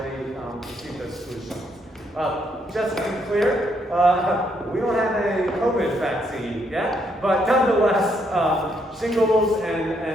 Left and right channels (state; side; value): normal; both; correlation 0.74